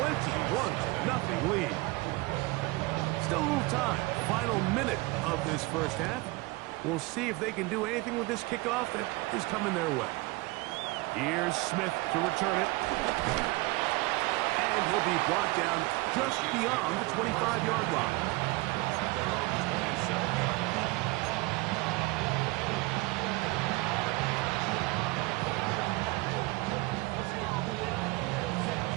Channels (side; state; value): left; quieter; 22.9 dB